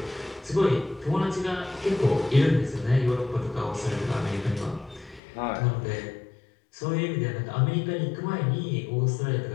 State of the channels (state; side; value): drops out; right; at 5.2 s